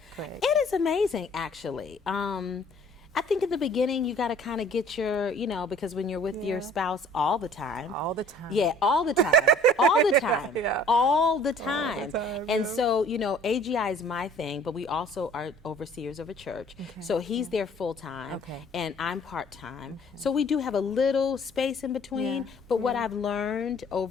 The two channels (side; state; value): both; normal; correlation 0.54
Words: Craig? It is amazing, actually. I think in the beginning you got to kind of get your, because when you're with your spouse all the time. All the time. Yeah, all the time. All the time. Yeah. All the time. All the time, And yeah. so, AGI is my thing, but we also are overseers of a church. Okay. So he's there full time Okay. and I'm part time. So we do have a little space in between. Yeah. But what I've learned